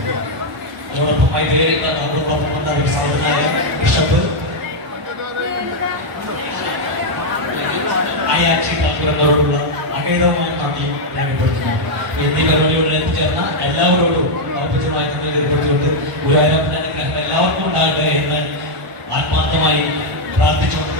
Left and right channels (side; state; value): left; late; 1.0 ms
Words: അതോടൊപ്പം മൈത്രിയിൽ നമ്മളോടൊപ്പം വന്ന ഒരു സാധുനായ ബിഷപ്പ് ആയാക്ഷി താക്കൂരങ്ങളോടുള്ള അകേതമായ നന്ദിയും രേഖപ്പെടുത്തുന്നു. എന്നീ പരിപാടിയോട് എത്തിച്ചേർന്ന എല്ലാവരോടും ഔപചാരികമായി നന്ദി രേഖപ്പെടുത്തിക്കൊണ്ട് ഗുരുവായൂരപ്പന്റെ അനുഗ്രഹം എല്ലാവർക്കും ഉണ്ടാകട്ടെ എന്ന് ആത്മാർത്ഥമായി പ്രാർത്ഥിച്ചുകൊണ്ട്